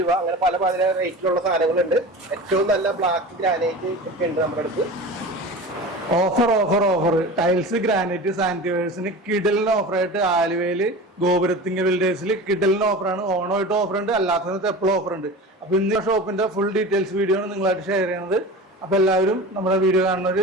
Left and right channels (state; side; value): normal; both; correlation 0.33